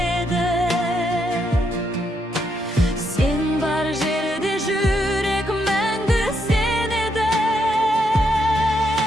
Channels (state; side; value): normal; both; correlation 0.78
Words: сен бар жерде жүрек мәңгі сенеді.